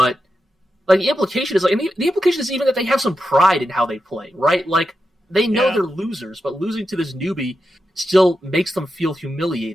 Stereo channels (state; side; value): normal; both; correlation 0.88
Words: like the implication is like, and the implication is even that they have some pride in how they play, right? Like they know they're losers, but losing to this newbie still makes them feel